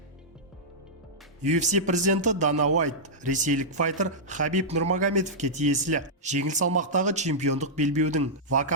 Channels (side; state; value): both; normal; correlation -0.11